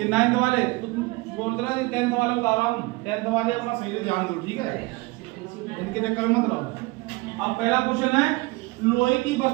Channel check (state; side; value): quieter; left; 23.6 dB